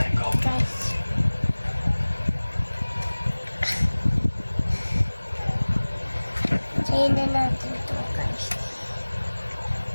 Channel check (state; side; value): inverted; both; correlation -1.00